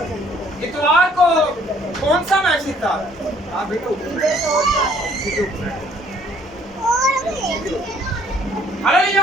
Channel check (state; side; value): normal; both; correlation 0.61